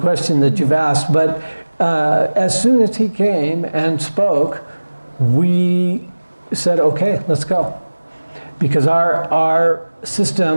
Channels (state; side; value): inverted; both; correlation -1.00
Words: that you've asked, but as soon as he came and spoke, we said, okay, let's go. Because our